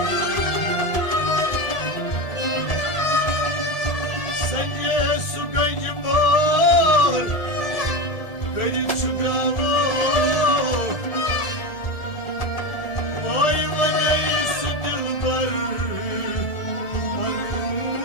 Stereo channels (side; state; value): right; late; 1.7 ms